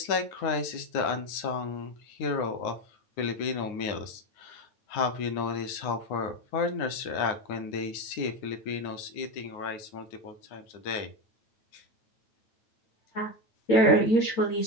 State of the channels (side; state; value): right; late; 9.6 ms